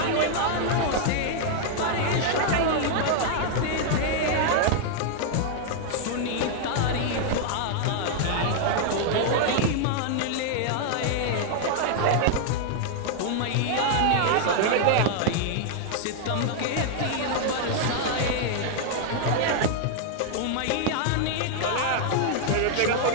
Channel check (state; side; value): different; both; correlation 0.00